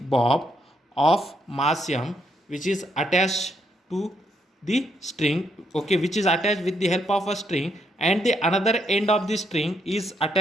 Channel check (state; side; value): normal; both; correlation 0.75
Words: of mass m which is attached to the string. Okay, which is attached with the help of a string and the another end of the string is